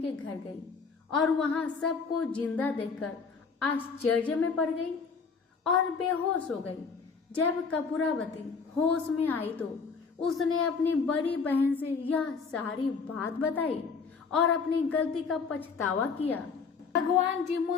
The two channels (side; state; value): right; quieter; 5.2 dB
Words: के घर गई और वहां सबको जिंदा देखकर आश्चर्य में पड़ गई और बेहोश हो गई। जब कपूरावती होश में आई तो उसने अपनी बड़ी बहन से यह सारी बात बताई और अपनी गलती का पछतावा किया। भगवान